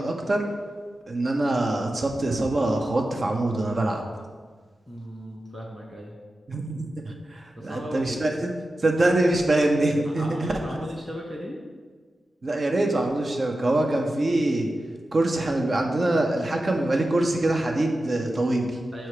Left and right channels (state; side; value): normal; both; correlation 0.93